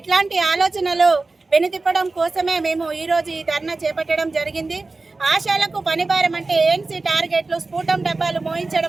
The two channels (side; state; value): left; quieter; 3.5 dB